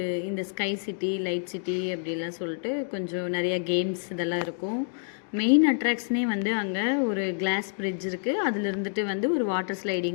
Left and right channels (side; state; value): right; silent; digital silence